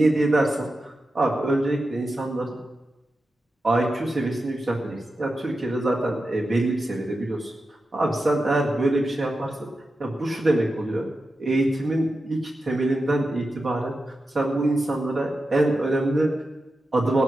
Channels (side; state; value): both; normal; correlation 0.91